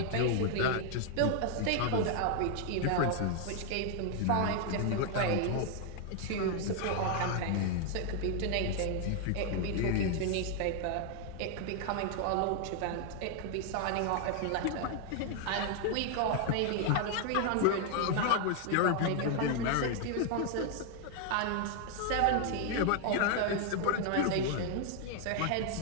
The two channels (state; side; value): different; both; correlation 0.00